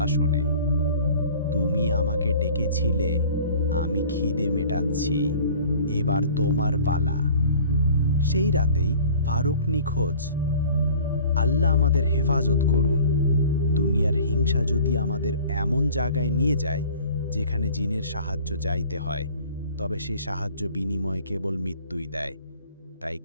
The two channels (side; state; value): both; inverted; correlation -0.47